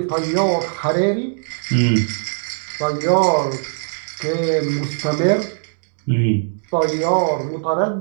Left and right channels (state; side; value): silent; left; digital silence